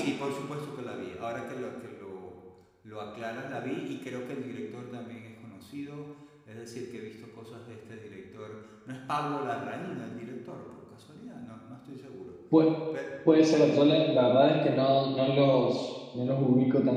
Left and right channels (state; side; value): identical; both; correlation 1.00